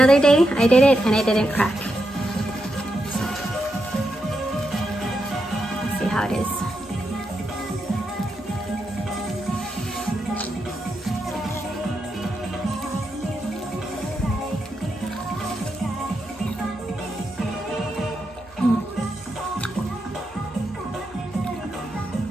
day I did it and it didn't crack. So, let's see how it is.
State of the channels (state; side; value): normal; both; correlation 0.85